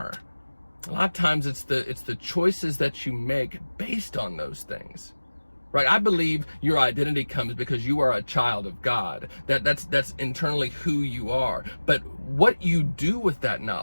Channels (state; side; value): inverted; both; correlation -1.00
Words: A lot of times it's the choices that you make based on those things, right? I believe your identity comes because you are a child of God. That's internally who you are. But what you do with that